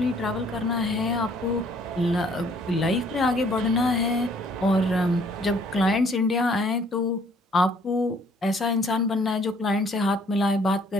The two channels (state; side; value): normal; both; correlation 0.61